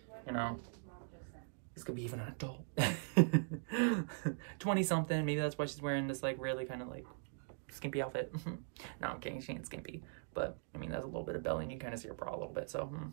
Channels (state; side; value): silent; left; digital silence